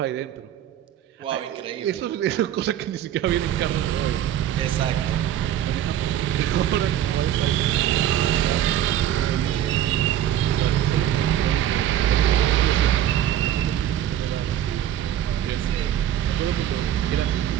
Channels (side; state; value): left; quieter; 11.2 dB